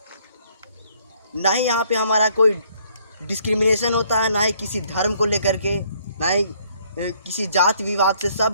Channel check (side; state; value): both; inverted; correlation -0.65